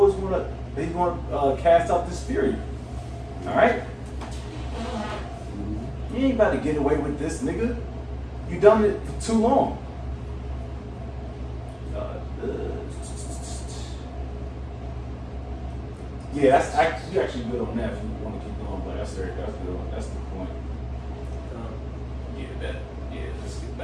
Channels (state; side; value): identical; both; correlation 1.00